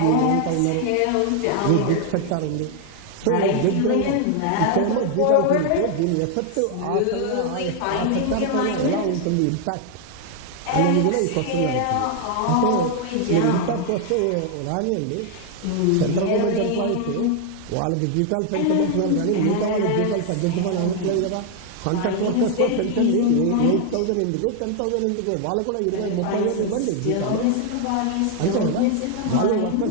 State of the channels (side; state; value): both; different; correlation 0.00